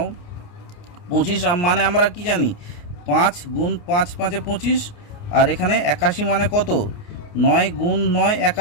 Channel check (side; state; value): right; late; 29 ms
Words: 25 মানে আমরা কি জানি 5 গুণ 5 5 25, আর এখানে 81 মানে কত 9 গুণ 9